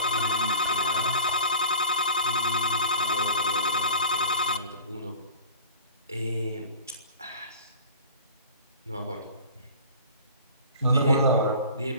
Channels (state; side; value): inverted; both; correlation -0.40